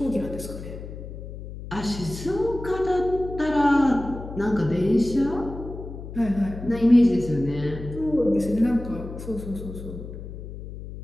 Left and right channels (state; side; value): noise; left; hum, 11 dB below the sound